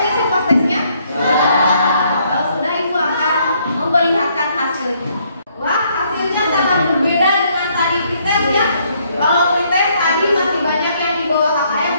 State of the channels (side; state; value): both; inverted; correlation -0.69